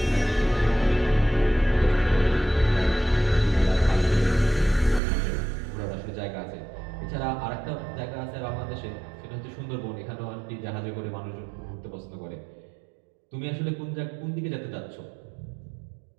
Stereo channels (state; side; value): drops out; left; at 5.0 s